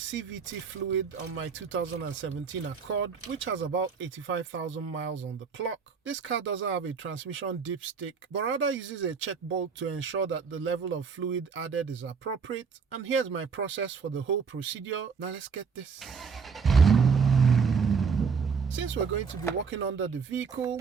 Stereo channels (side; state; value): left; quieter; 5.7 dB